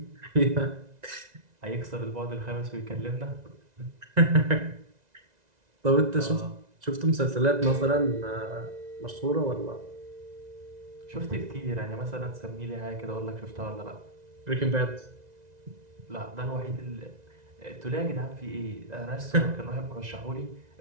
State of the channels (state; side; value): late; left; 1.9 ms